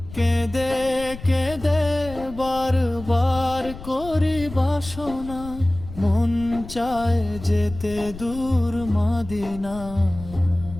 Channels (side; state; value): left; noise; rumble, 14 dB below the sound